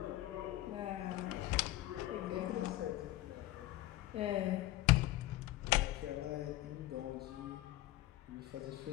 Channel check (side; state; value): right; quieter; 16.0 dB